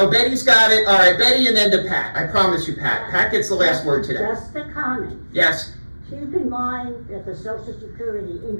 Betty's got it. All right, Betty and then to Pat. I promise you, Pat. Pat gets the last word today. Just a comment. Yes. Keep in mind that the Social Security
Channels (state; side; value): inverted; both; correlation -1.00